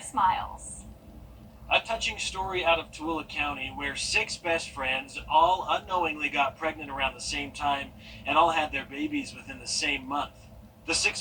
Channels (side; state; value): both; identical; correlation 1.00